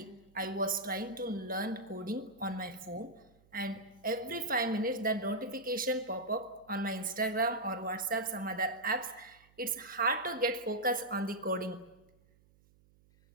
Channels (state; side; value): noise; right; hum, 30 dB below the sound